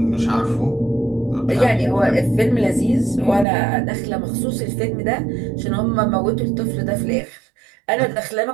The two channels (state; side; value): drops out; left; at 3.5 s